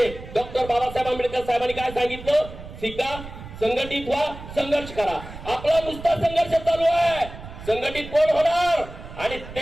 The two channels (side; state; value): right; noise; rumble, 13 dB below the sound